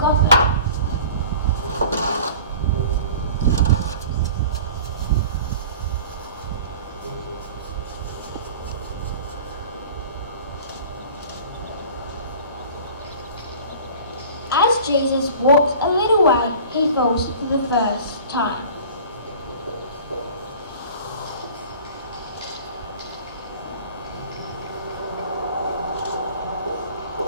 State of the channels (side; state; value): both; inverted; correlation -0.43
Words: As Jesus walks a little way, he falls for the first time.